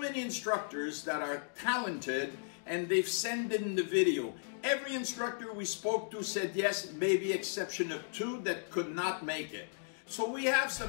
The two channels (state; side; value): silent; right; digital silence